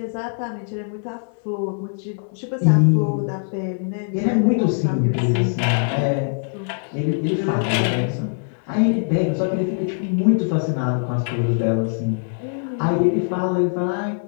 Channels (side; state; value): right; silent; digital silence